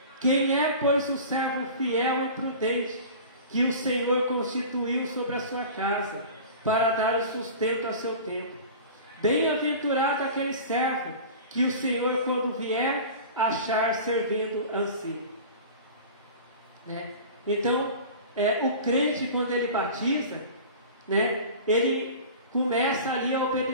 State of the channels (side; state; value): both; inverted; correlation -0.37